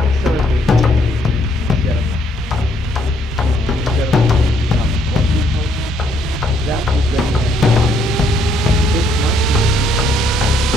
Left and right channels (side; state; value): both; normal; correlation 0.69